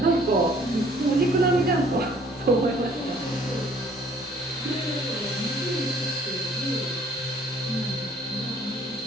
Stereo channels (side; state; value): both; normal; correlation 0.58